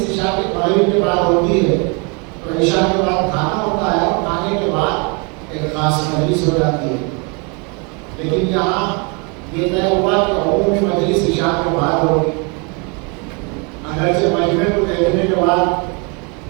عشاء کے بعد ہوگی. اگرچہ مجمع کو دیکھنے کے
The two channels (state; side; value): quieter; left; 33.0 dB